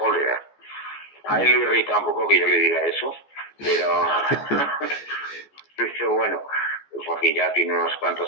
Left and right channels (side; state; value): right; late; 14 ms